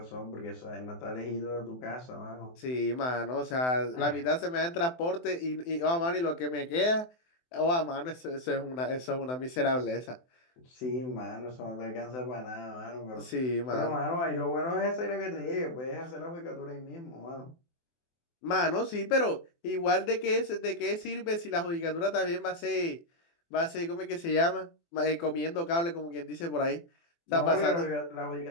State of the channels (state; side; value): late; right; 24 ms